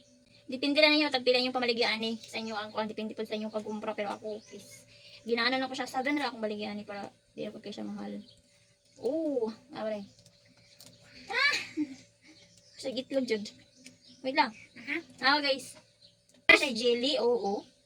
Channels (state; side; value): identical; both; correlation 1.00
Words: Depende na ninyo, tagpila yung pamaligyan eh. Sa inyo ang kwan, depende po sa inyong pag-umpra. Pero ako, ginaano na ko siya. 7 na akong baligyan eh para di ako kayo siya mahal. Oh, abray. Sa gitlog jud. Wait lang. Guys. Siya jelly, oo.